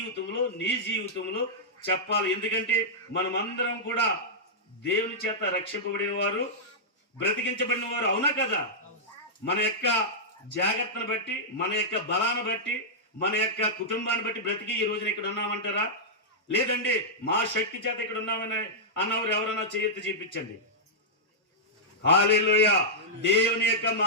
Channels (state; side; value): normal; both; correlation -0.10